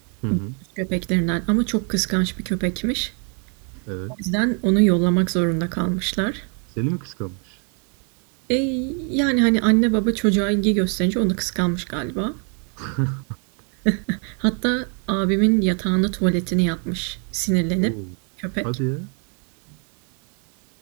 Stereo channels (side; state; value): left; quieter; 39.4 dB